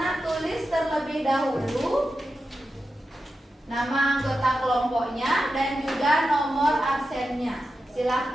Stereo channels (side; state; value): both; normal; correlation 0.90